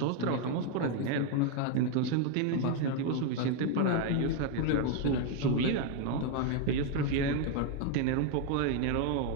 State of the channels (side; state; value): both; different; correlation 0.01